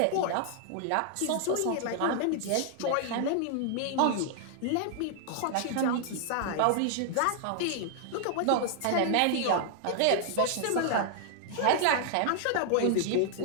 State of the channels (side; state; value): both; different; correlation 0.00